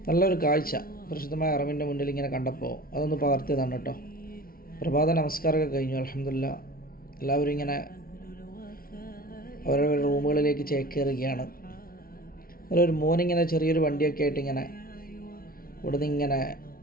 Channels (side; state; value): right; late; 0.43 ms